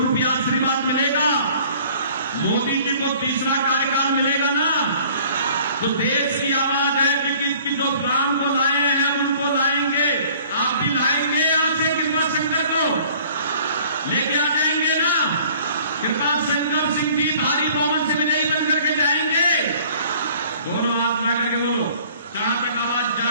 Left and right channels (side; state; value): both; inverted; correlation -0.52